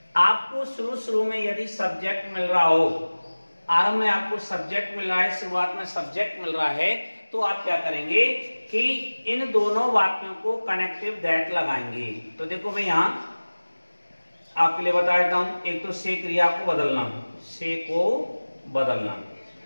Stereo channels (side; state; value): both; inverted; correlation -1.00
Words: आपको शुरू में यदि सब्जेक्ट मिल रहा हो, आरंभ में आपको सब्जेक्ट मिल रहा है, शुरुआत में सब्जेक्ट मिल रहा है, तो आप क्या करेंगे कि इन दोनों वाक्यों को कनेक्टिव दैट लगाएंगे। तो देखो मैं यहां आपके लिए बता देता हूं, एक तो से क्रिया को बदलना, से को बदलना,